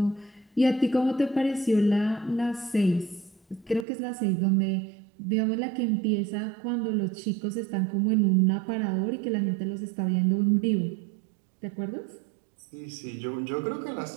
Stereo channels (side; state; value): left; drops out; at 3.9 s